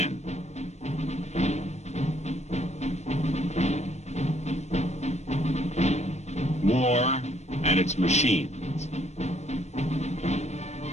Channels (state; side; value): late; right; 0.32 ms